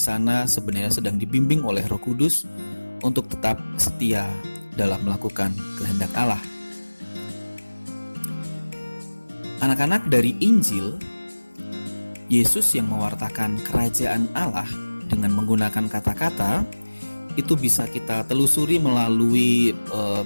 sebenarnya sedang dibimbing oleh Roh Kudus untuk tetap setia dalam melakukan kehendak Allah. Anak-anak, dari Injil, Yesus yang mewartakan kerajaan Allah dengan menggunakan kata-kata itu bisa kita telusuri melalui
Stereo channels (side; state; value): both; inverted; correlation -1.00